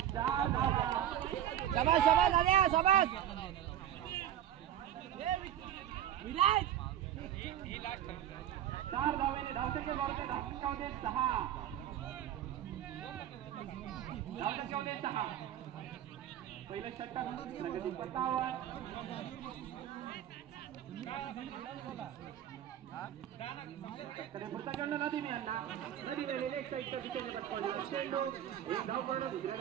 शाबास शाबास आल्या शाबास विराट 4 धावेने धावसंख्या बरोबर धावसंख्यामध्ये 6 पहिले षटक प्रगती पथावर पुढचा चेंडू नदीम यांना नदीम एक साईडच्या दिशेने चेंडू एक धाव पूर्ण दुसऱ्या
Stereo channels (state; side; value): quieter; left; 11.0 dB